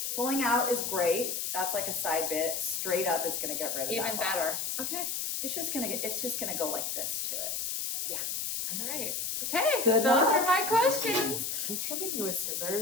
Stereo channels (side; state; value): left; noise; hiss, 2 dB below the sound